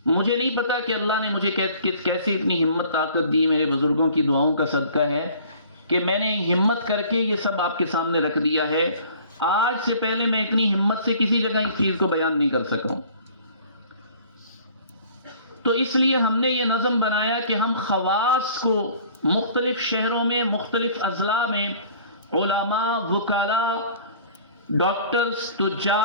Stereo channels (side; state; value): both; inverted; correlation -0.51